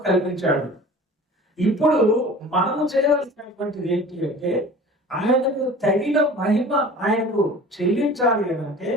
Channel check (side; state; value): both; normal; correlation 0.42